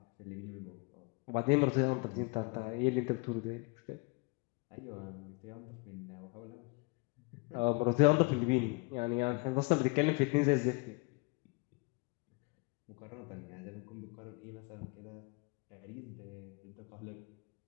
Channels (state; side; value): quieter; right; 28.7 dB